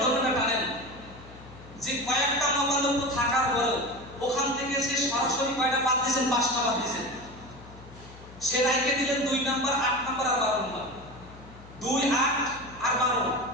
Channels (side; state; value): left; noise; hum, 19 dB below the sound